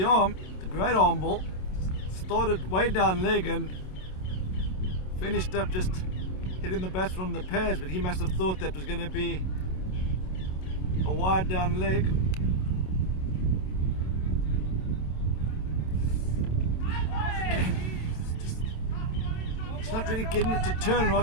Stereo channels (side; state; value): right; late; 27 ms